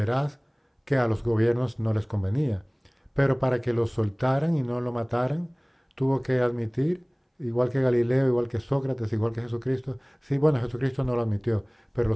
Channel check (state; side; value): identical; both; correlation 1.00